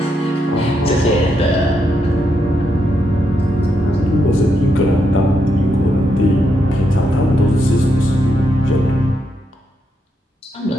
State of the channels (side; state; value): both; normal; correlation 0.81